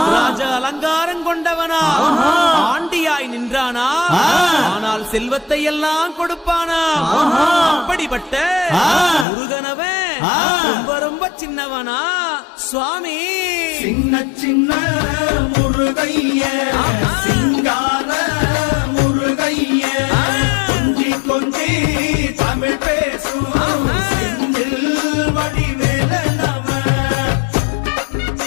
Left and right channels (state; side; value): drops out; right; at 9.2 s